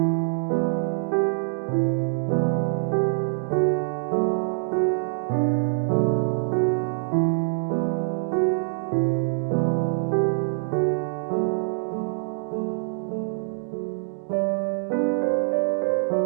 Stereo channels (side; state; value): left; silent; digital silence